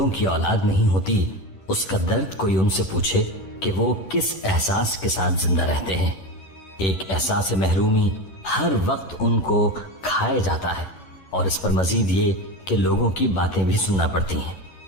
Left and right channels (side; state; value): right; late; 10 ms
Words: کی اولاد نہیں ہوتی اس کا درد کوئی ان سے پوچھے کہ وہ کس احساس کے ساتھ زندہ رہتے ہیں۔ ایک احساس محرومی ہر وقت ان کو کھائے جاتا ہے، اور اس پر مزید یہ کہ لوگوں کی باتیں بھی سننا پڑتی ہیں۔